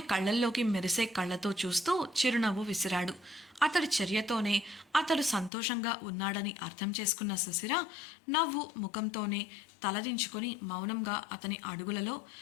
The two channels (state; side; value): drops out; right; at 5.5 s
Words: కళ్ళల్లోకి మెరిసే కళ్ళతో చూస్తూ చిరునవ్వు విసిరాడు. అతడి చర్యతోనే అతడు సంతోషంగా ఉన్నాడని అర్థం చేసుకున్న శిశిర నవ్వు ముఖంతోనే తలదించుకొని మౌనంగా అతని